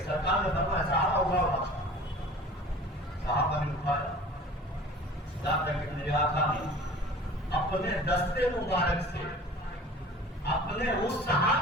نے فرمایا صحابہ اٹھاؤ، صحابہ نے اٹھایا، یہاں تک کہ میرے آقا نے اپنے دستے مبارک سے اپنے اس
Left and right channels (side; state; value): both; normal; correlation 0.43